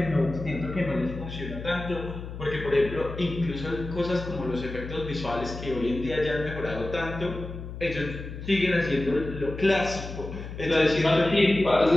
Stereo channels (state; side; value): noise; left; hum, 9 dB below the sound